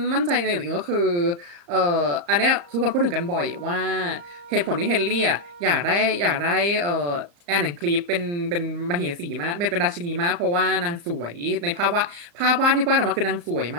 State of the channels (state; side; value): late; left; 35 ms